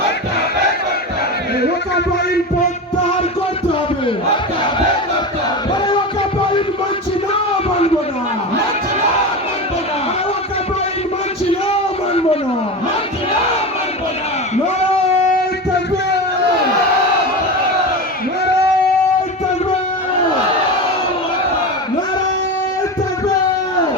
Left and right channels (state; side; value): normal; both; correlation 0.23